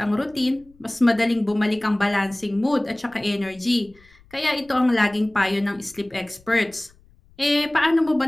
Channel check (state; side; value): noise; left; rumble, 29 dB below the sound